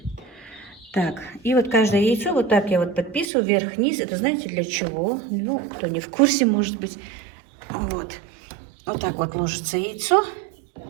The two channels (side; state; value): left; drops out; at 3.2 s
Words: Так, и вот каждое яйцо вот так я вот подписываю вверх-вниз. Это знаете для чего? Ну, кто не в курсе, может быть. Вот. Вот так вот ложится яйцо.